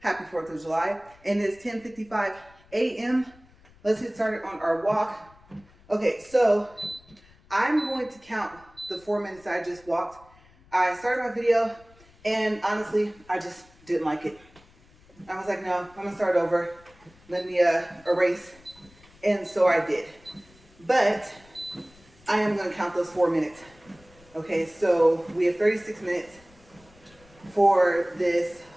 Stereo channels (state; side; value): noise; left; rumble, 27 dB below the sound